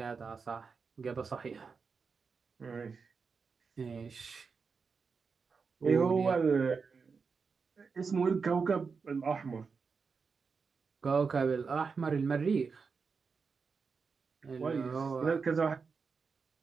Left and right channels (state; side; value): quieter; left; 5.2 dB